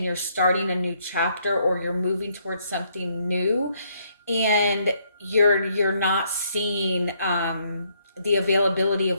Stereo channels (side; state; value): both; inverted; correlation -0.71